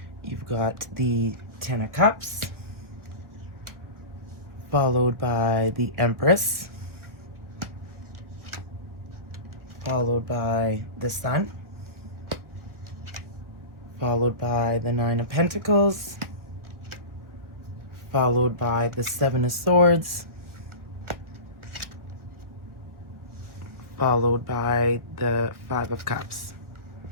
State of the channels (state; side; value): late; left; 1.3 ms